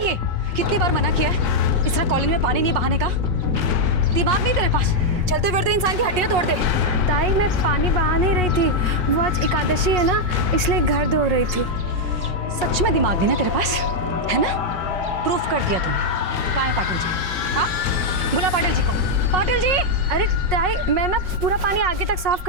ये? कितनी बार मना किया है इस तरह कॉलेज में पानी नहीं बहाने का? दिमाग नहीं तेरे पास? चलते फिरते इंसान की हड्डियां तोड़ दे। ताई मैं पानी बहा नहीं रही थी, वो आज एकादशी है ना, इसलिए घर धो रही थी। सच में दिमाग नहीं ना तेरे पास, है ना? प्रूफ कर दिया तूने। कहाँ है पाटिल जी? हाँ, बुला पाटिल जी को। पाटिल जी! अरे ताई, मैं ना पूरा पानी आगे तक साफ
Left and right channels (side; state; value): left; late; 5.5 ms